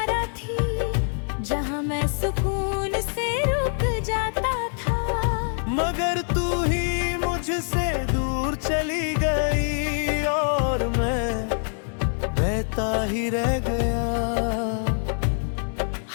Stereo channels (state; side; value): silent; right; 62 dB below the other